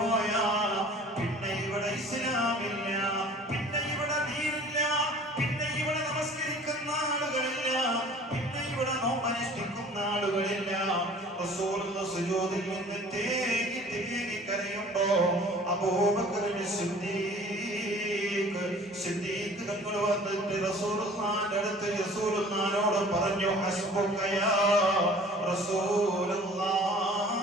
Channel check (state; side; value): normal; both; correlation 0.48